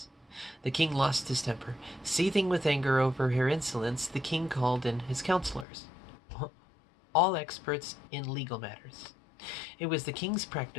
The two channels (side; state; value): right; drops out; at 5.7 s